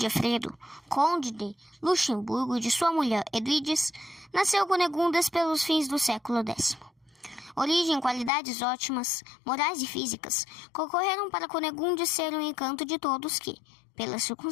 conde de Luxemburgo, e de sua mulher Edwiges, nasceu Cunigundes pelos fins do século X. Origem e qualidades ótimas, morais e físicas, concorreram para Cunigundes ser o encanto de todos que, pelas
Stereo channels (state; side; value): drops out; right; at 8.3 s